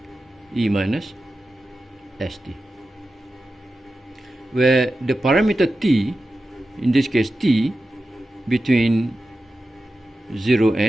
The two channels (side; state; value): both; normal; correlation 0.93